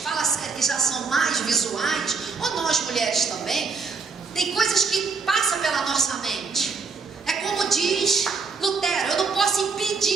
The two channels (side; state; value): left; quieter; 4.7 dB